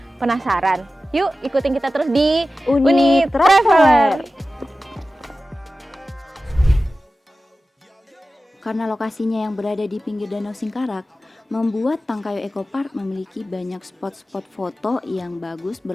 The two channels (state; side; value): normal; both; correlation 0.94